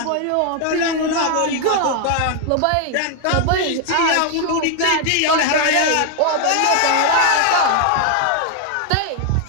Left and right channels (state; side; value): different; both; correlation 0.00